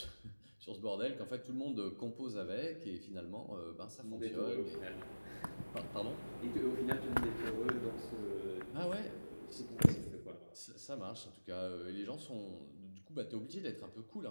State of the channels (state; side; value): inverted; both; correlation -1.00